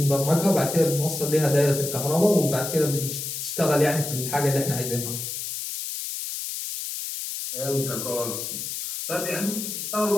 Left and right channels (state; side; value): noise; left; hiss, 5 dB below the sound